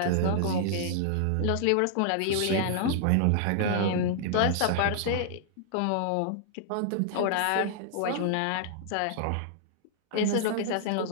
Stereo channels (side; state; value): both; different; correlation -0.01